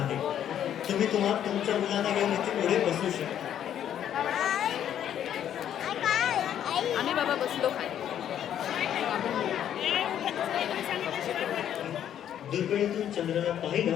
तुम्ही तुमच्या मुलांना घेऊन इथे पुढे बसू शकता. आम्ही बाबा बसलो खाली. दुर्बिणीतून चंद्राला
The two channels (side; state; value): right; quieter; 10.1 dB